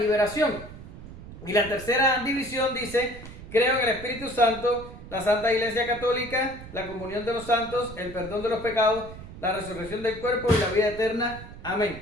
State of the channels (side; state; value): right; noise; rumble, 14 dB below the sound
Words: Y la tercera división dice, creo en el Espíritu Santo, la Santa Iglesia Católica, la comunión de los santos, el perdón de los pecados, la resurrección del cuerpo y la vida eterna.